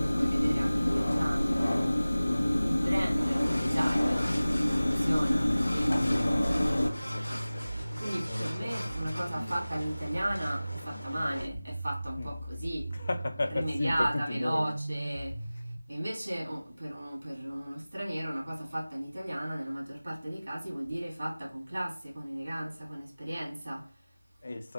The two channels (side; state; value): both; inverted; correlation -0.98